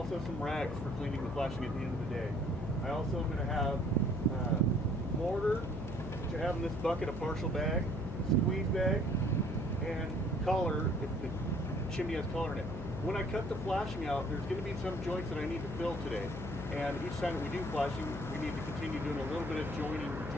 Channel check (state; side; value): noise; left; hum, 7 dB below the sound